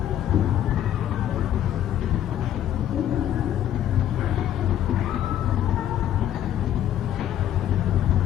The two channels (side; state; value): right; quieter; 11.3 dB